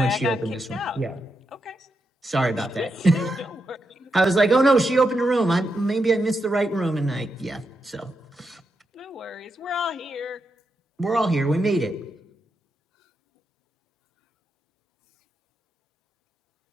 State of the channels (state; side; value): normal; both; correlation 0.85